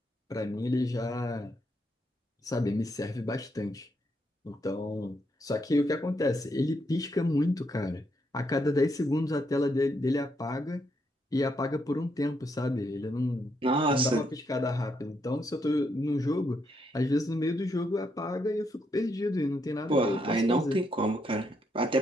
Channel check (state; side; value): normal; both; correlation 0.77